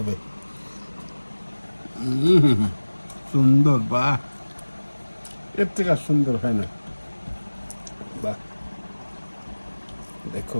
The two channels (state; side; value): inverted; both; correlation -1.00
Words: সুন্দর, বাহ, এর থেকে আর সুন্দর হয় না, বাহ।